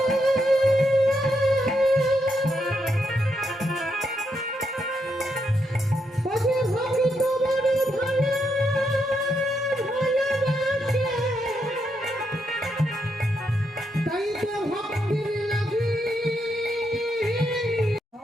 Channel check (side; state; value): both; normal; correlation 0.80